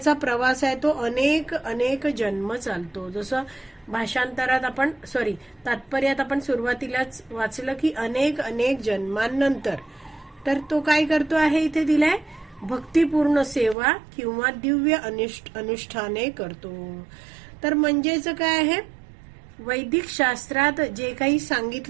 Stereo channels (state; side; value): drops out; left; at 13.8 s